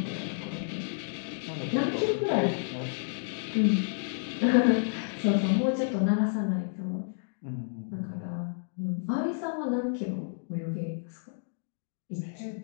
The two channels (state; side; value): silent; right; digital silence